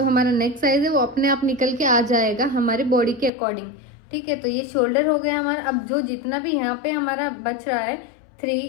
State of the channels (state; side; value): drops out; right; at 3.3 s